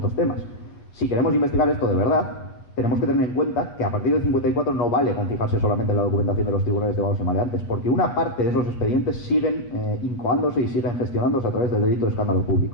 temas. Si queremos investigar esto de verdad, tenemos que tener en cuenta que a partir del 54 no vale con fijarse solamente en la documentación de los tribunales de vagos y maleantes, porque una parte de esos expedientes siguen incoándose y siguen gestionándose a través del delito de escándalo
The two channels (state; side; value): late; right; 8.6 ms